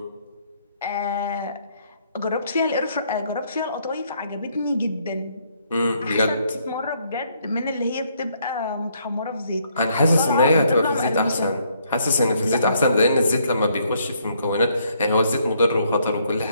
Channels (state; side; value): inverted; both; correlation -0.70